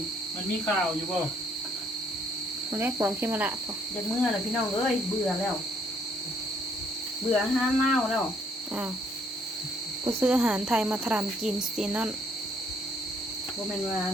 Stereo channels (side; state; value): both; normal; correlation 0.67